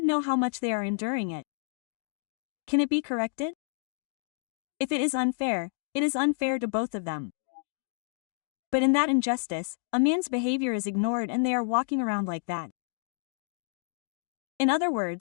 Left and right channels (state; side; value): silent; right; digital silence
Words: know how much they are enduring it. Can it be corrected? If it is unfair, it is unfair to both of them. But in that injustice, a man's behavior is ignored and they are walking around like that. In other